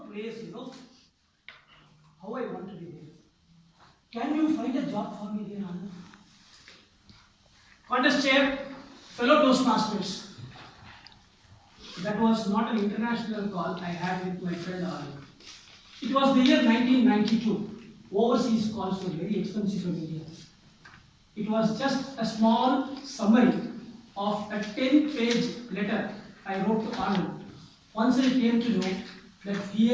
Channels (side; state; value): both; identical; correlation 1.00